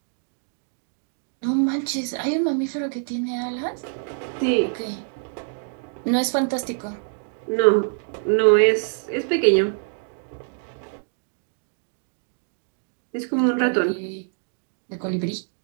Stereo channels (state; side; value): silent; left; digital silence